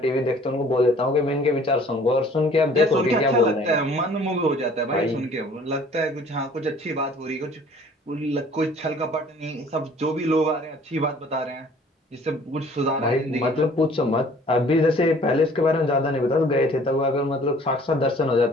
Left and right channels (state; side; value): normal; both; correlation 0.53